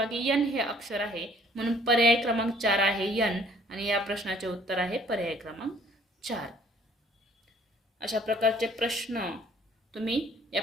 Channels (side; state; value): both; normal; correlation 0.57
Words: एन हे अक्षर आहे. म्हणून पर्याय क्रमांक 4 आहे एन आणि या प्रश्नाचे उत्तर आहे पर्याय क्रमांक 4. अशा प्रकारचे प्रश्न तुम्ही या